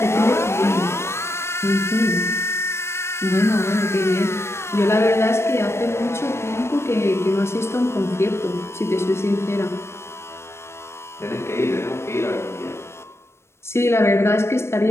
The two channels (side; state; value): right; late; 0.13 ms